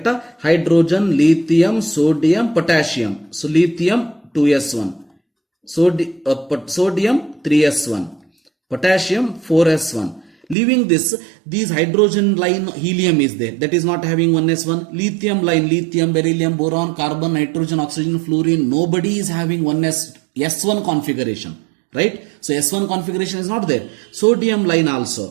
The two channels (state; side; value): drops out; left; at 10.6 s